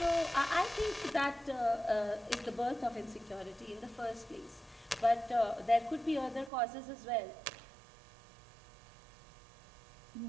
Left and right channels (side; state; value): left; drops out; at 6.5 s